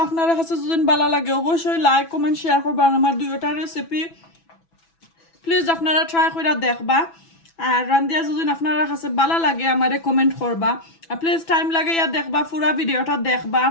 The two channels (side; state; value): right; late; 6.0 ms